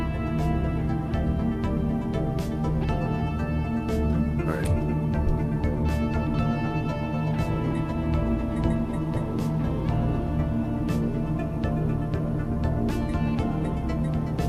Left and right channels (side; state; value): both; identical; correlation 1.00